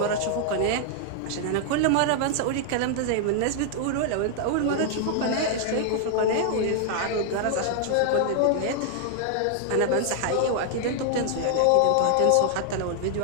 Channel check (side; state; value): both; different; correlation -0.01